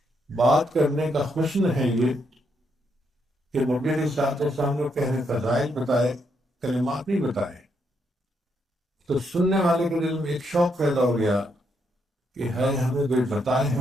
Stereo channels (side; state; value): both; normal; correlation 0.77